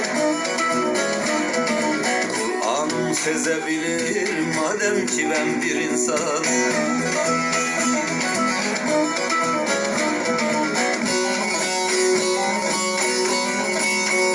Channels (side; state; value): both; identical; correlation 1.00